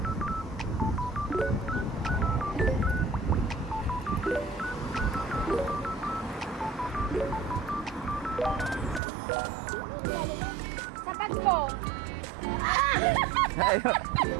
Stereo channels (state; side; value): drops out; left; at 9.0 s